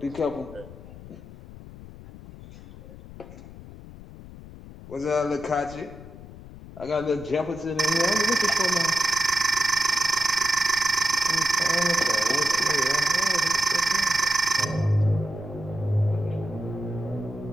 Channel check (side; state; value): left; noise; rumble, 16 dB below the sound